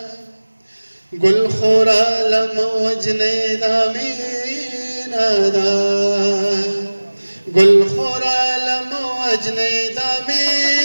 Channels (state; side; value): inverted; both; correlation -1.00